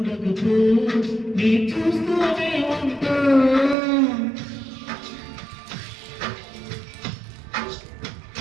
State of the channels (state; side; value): drops out; left; at 3.8 s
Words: నీ చూస్తూనే ఉంటా.